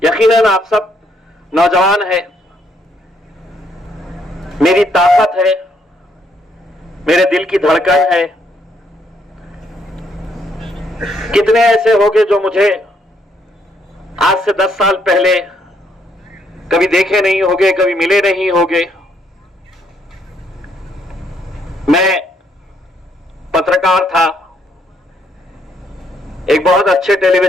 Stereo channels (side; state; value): both; normal; correlation 0.72